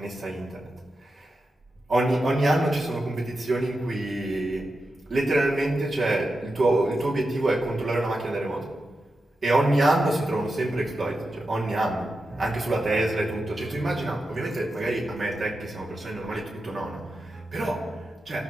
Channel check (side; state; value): both; normal; correlation 0.89